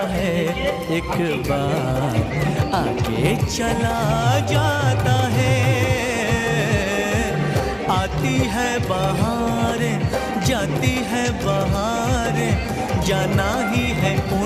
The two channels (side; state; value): both; identical; correlation 1.00